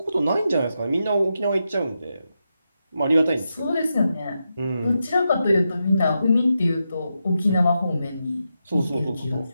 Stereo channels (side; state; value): both; inverted; correlation -0.87